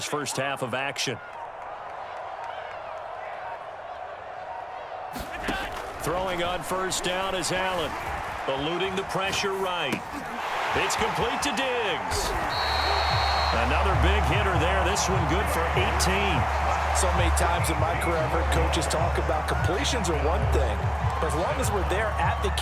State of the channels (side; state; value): both; identical; correlation 1.00